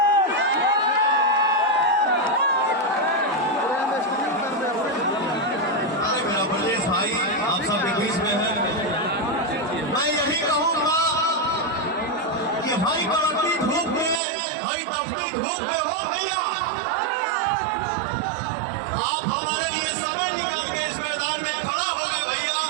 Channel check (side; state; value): left; drops out; at 14.2 s